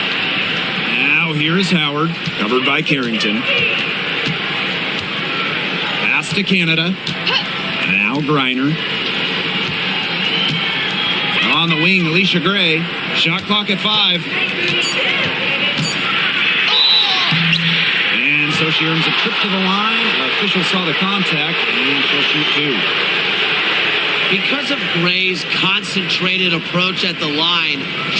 Now here's Howard, covered by Carrington. Pass to Canada. Now Griner. On the wing, Alicia Gray. Shot clock at 5. And so she earns a trip to the line. Official saw the contact, and she'll shoot 2. Because of Gray's concentrated approach at the line,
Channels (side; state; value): both; identical; correlation 1.00